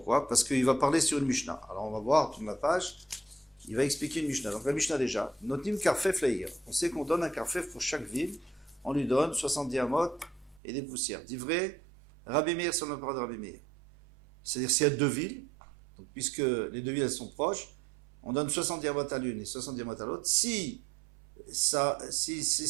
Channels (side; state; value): left; drops out; at 10.6 s